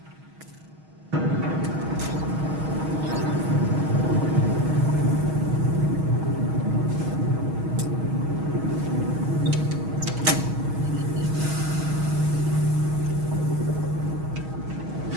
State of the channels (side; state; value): left; late; 6.3 ms